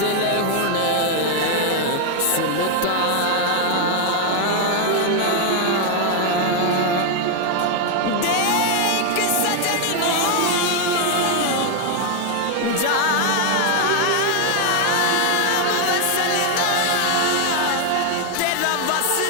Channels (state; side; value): different; both; correlation 0.01